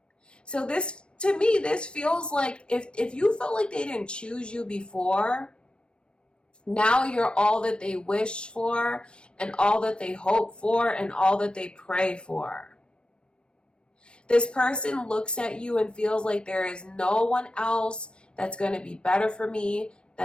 So this, to me, this feels like if you felt like they didn't choose you before, now you're all that they wish for and all that they hope for and all that they pray for. This person looks at you and feels like there is no one else that's going to be better for me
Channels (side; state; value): right; late; 0.056 ms